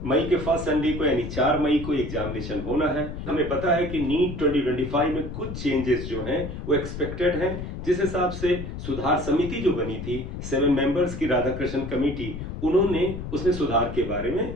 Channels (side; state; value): left; noise; rumble, 7 dB below the sound